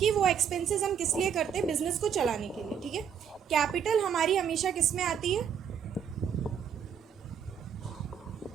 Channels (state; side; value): quieter; left; 7.8 dB